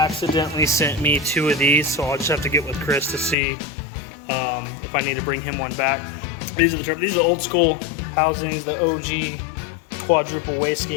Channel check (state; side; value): drops out; right; at 3.4 s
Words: sent me 2 of these, so I'll just have to get with Chris to see if I need to bring him one back. These are the old school housings, the OG quadruple